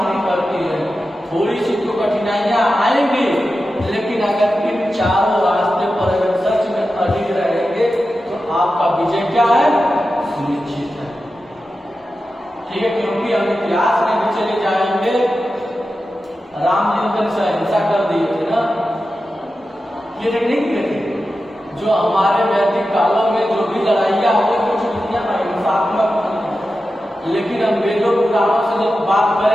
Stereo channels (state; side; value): normal; both; correlation 0.92